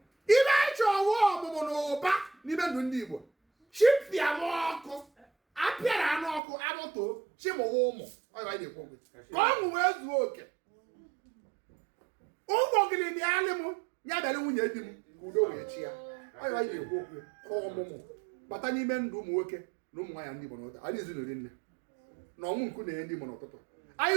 ibe anyị chọọ ọwụ ọmụmụ na ụba n'ime ndụ ndị Igbo chipịa m ọkụ apịara anụ ọkụ abụtoo chimụwa ụmụ ọ ibe anyị na-ekwu ka ọṅụ wee zuo oke ụmụ ogiri bịalị m ya bịara nwunye di m ka udo wee chi ya ọ ibe anyị na-ekwu okwu ka ọmụmụ bata n'ime ndụ ụmụ nwoke na ụmụ nwaanyị ndị Igbo n'ụtụtụ anyị ezinụlọ nne na ọnwụ nku na-enye ndị Igbo n'ụtụtụ anyị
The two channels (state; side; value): drops out; left; at 6.4 s